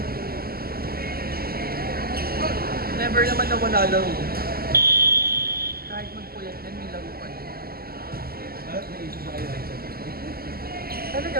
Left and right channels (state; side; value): late; left; 0.44 ms